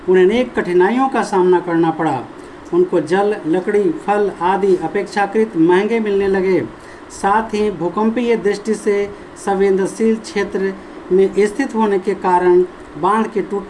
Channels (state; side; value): identical; both; correlation 1.00